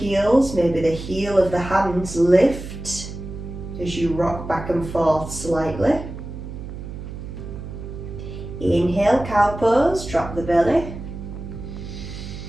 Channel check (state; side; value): noise; right; hum, 10 dB below the sound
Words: Maybe the heel of the hands lift as you rock back and forth slightly. Inhale, cow pose, drop the belly.